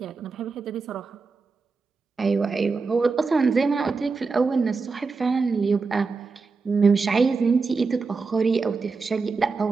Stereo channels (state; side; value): quieter; left; 4.5 dB